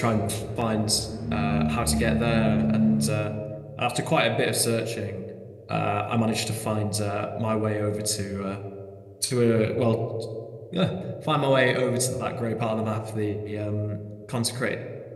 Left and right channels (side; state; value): both; identical; correlation 1.00